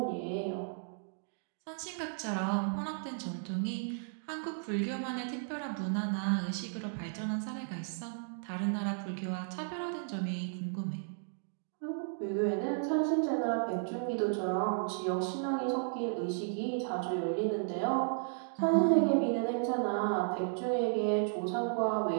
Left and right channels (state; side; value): silent; left; digital silence